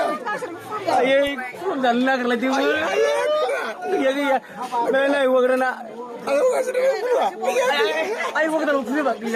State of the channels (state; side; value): identical; both; correlation 1.00